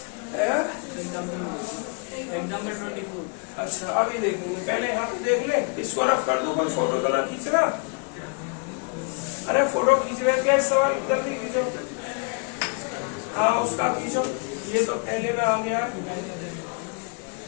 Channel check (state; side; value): quieter; right; 36.8 dB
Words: 24। अच्छा अभी देखेंगे, पहले यहाँ पे देख ले, इसको रफ कर दूं, कोई फोटो तो ना खींच रहा, अरे फोटो खींच रहे क्या, इस सवाल को जल्दी खींचो, हाँ उसका खींचो, ये तो पहले में आ गया,